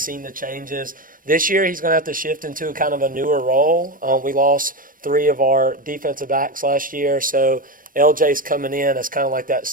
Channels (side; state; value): left; late; 0.40 ms